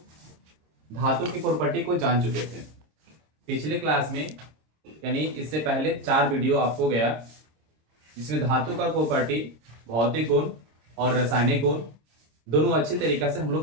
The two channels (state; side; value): late; left; 26 ms